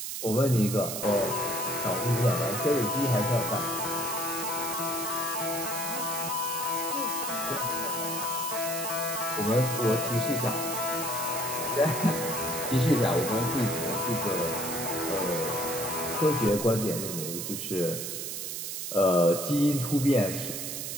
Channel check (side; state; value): right; noise; hiss, 5 dB below the sound